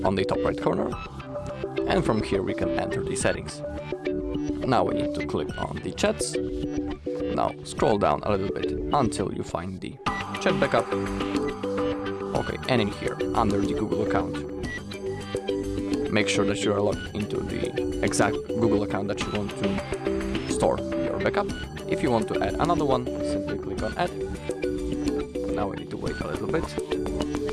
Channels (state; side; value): identical; both; correlation 1.00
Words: on the top right corner, and from here we can enter the settings. Now we need to click on the chats. Now scroll down a little bit until you find the chat backup. Okay, and in here, under the Google account, make sure that you are logged into the exact Google account that you want to store your backup. If you want to add another one, simply click on add. Now we need to wait a little bit.